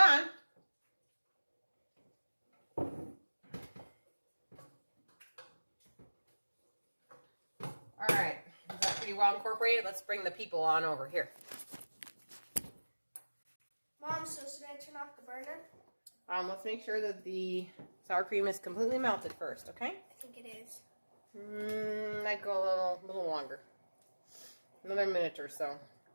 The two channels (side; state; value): both; inverted; correlation -1.00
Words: All right, is that pretty well incorporated? Let's bring the people on over here. Mom, so should I turn off the burner? Let's make sure that the sour cream is completely melted first, okay? I think it is. I'd go a little longer. Another minute or so.